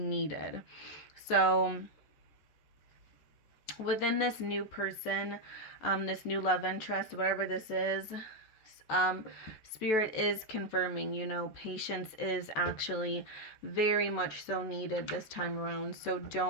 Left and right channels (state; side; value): late; right; 14 ms